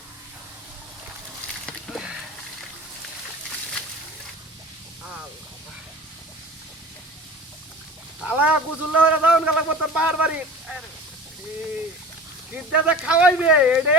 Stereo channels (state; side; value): normal; both; correlation 0.38